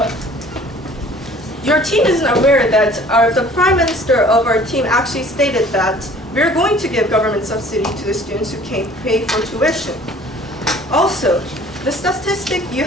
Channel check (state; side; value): normal; both; correlation 0.51